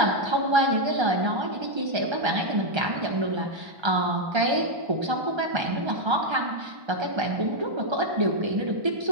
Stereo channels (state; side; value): late; left; 1.3 ms